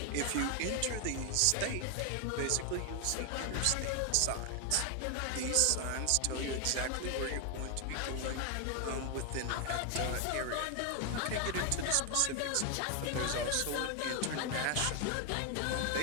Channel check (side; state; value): both; different; correlation 0.00